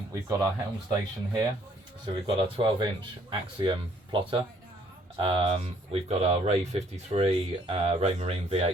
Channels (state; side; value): normal; both; correlation 0.64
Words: we've got our helm station here. So we've got our 12-inch Axiom plotter. We've got our Ray 53 Raymarine